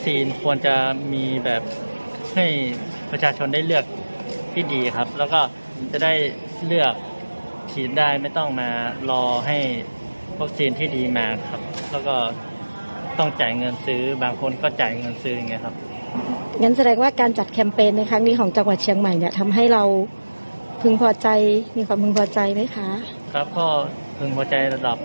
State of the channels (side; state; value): both; inverted; correlation -1.00